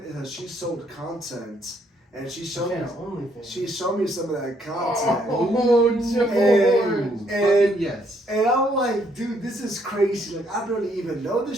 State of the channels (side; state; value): both; normal; correlation 0.70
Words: is that she sold content, and she showed me some of that content. And yes. And I'm like, dude, this is crazy. I barely even know